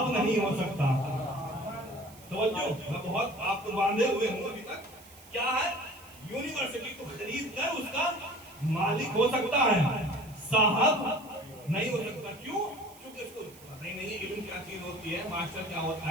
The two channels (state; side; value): noise; right; hiss, 22 dB below the sound